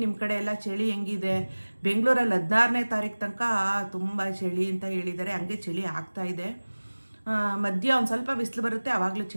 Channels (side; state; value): both; inverted; correlation -1.00